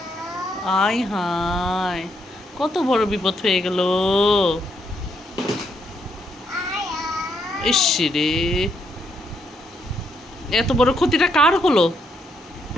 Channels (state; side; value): normal; both; correlation 0.76